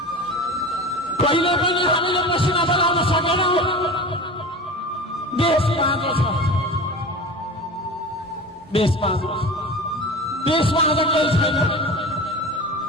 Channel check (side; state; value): both; normal; correlation 0.33